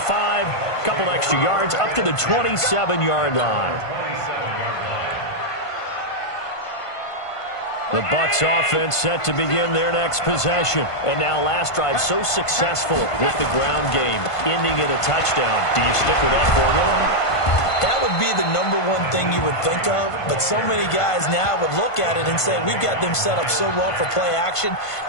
a couple extra yards, up to the 27-yard line. The Bucs offense set to begin their next possession. And now last drive so successful with the ground game, ending in a touchdown. Do you stick with that formula? That would be the #1 thing you would think of, but so many guys now would look at it and say, we've got them set up so well for play action.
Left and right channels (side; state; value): right; late; 1.5 ms